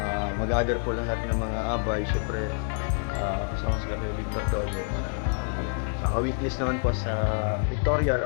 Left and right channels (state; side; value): silent; right; 58 dB below the other